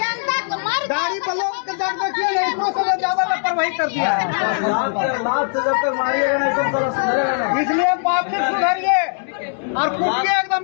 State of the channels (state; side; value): silent; right; digital silence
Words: को मर गाड़ी पर लोग जब देखिए इतना से ज्यादा लापरवाही कर दिया है। लात से जब तक मारिएगा नहीं सब साला सुधरेगा नहीं। इसलिए पब्लिक सुधरिए और कूदिए एकदम